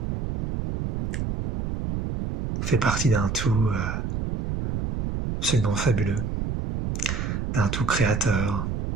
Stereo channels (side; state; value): right; noise; rumble, 3 dB below the sound